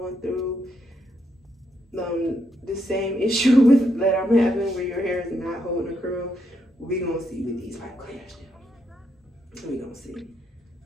through the same issue with that I'm having, where your hair is not holding a curl. We gonna see what these pipe cleaners do. We gonna see.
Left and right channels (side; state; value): both; normal; correlation 0.78